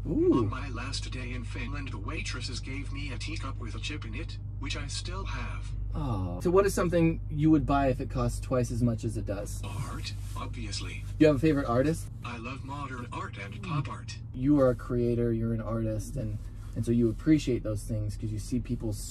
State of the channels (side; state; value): both; identical; correlation 1.00